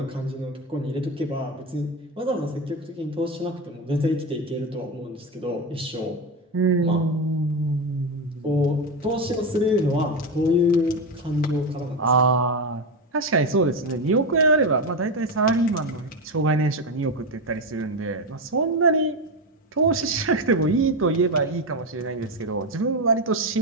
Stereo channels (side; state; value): both; normal; correlation 0.14